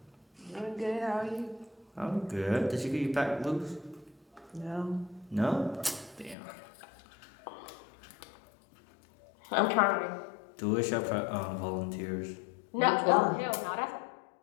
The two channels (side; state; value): right; drops out; at 6.4 s